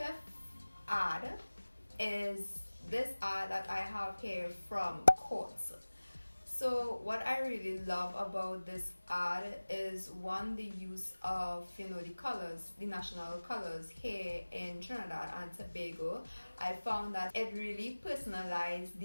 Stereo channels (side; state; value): both; inverted; correlation -1.00